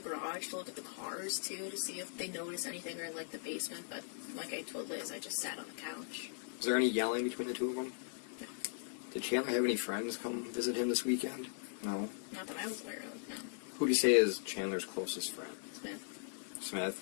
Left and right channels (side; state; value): right; silent; digital silence